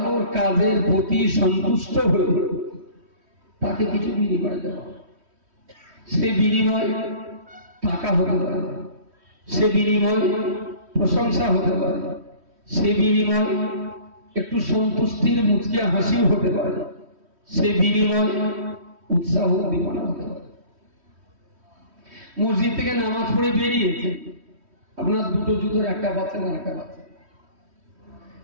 কাজের প্রতি সন্তুষ্ট হয়ে তাকে কিছু বিনিময় দেওয়া, সে বিনিময় টাকা হতে পারে, সে বিনিময় প্রশংসা হতে পারে, সে বিনিময় একটু সন্তুষ্টির মুচকি হাসিও হতে পারে, সে বিনিময় উৎসাহ উদ্দীপনা হতে পারে। মসজিদ থেকে নামাজ পড়ে বেরিয়েছে, আপনার দুটো জুতোর একটা বাচ্চা না একটা বাচ্চা,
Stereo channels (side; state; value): left; late; 3.1 ms